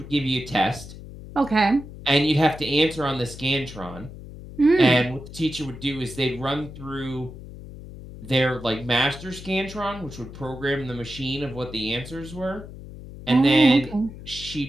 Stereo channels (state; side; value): noise; left; hum, 14 dB below the sound